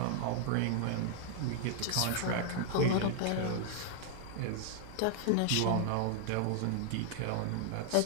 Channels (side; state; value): both; different; correlation 0.00